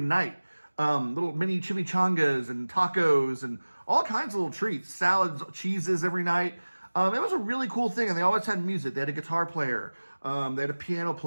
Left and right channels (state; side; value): inverted; both; correlation -1.00